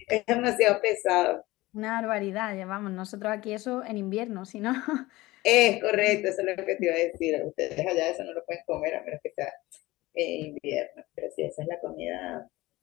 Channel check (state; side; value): quieter; right; 19.4 dB